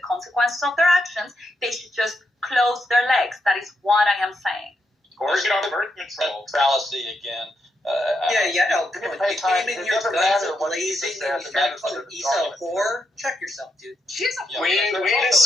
consequences of their actions, they should just close their legs. That is what I am saying. Or get on birth control. Fallacy again. Come on. You came in here guns blazing and you started calling Issa a whore? Check yourself, dude. She's a whore. Wait a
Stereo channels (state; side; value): normal; both; correlation 0.82